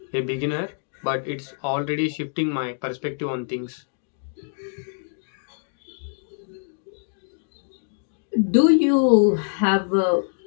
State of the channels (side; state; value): right; silent; digital silence